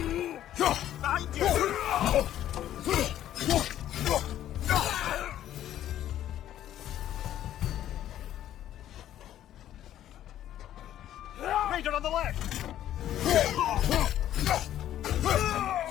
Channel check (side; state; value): right; quieter; 11.9 dB